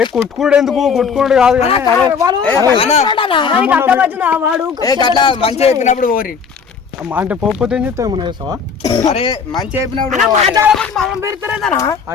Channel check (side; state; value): right; quieter; 6.0 dB